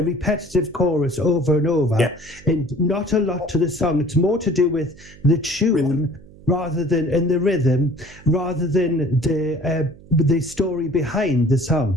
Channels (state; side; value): noise; right; hum, 22 dB below the sound